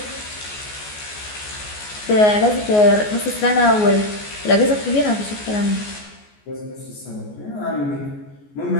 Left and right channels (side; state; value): right; late; 14 ms